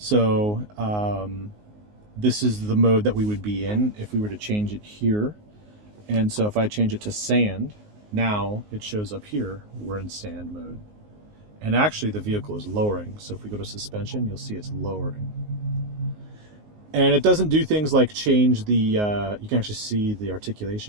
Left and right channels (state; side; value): late; left; 19 ms